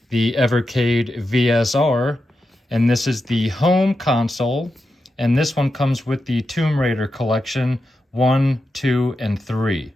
the Evercade VSR. And this is the home console. And this one comes with the Tomb Raider collection 1, 2, and 3.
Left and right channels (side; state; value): both; normal; correlation 0.88